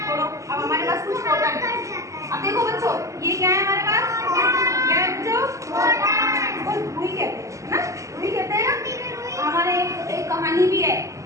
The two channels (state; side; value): late; left; 0.16 ms